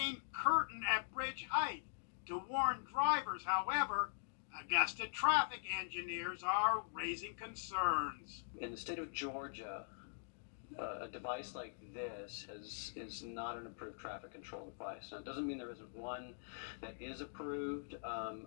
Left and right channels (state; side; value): silent; right; digital silence